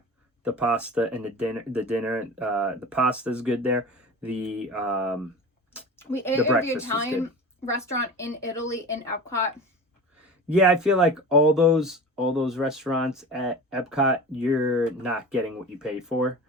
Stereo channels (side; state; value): both; normal; correlation 0.33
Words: The pasta and the dinner, the pasta is good there. The We ate The at the breakfast was Italian good. restaurant in Italy in Epcot. Yeah, I feel like all those restaurants at Epcot, you're not getting what you pay for.